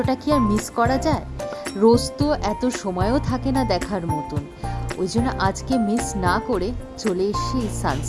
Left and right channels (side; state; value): both; identical; correlation 1.00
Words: কি আর মিস করা যায়? রোজ তো এত সময়ও থাকে না দেখার মতন, ওই জন্য আজকে মিস না করে চলে এসছি এই